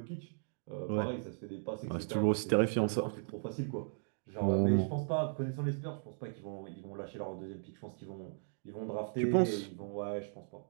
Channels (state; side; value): silent; left; digital silence